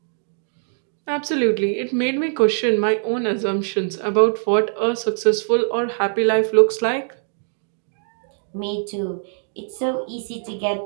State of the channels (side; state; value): left; silent; 64 dB below the other